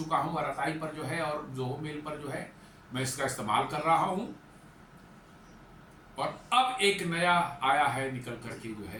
हूं आरताई पर जो है, और जोहो मेल पर जो है मैं इसका इस्तेमाल कर रहा हूं। और अब एक नया आया है निकल करके जो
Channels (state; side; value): identical; both; correlation 1.00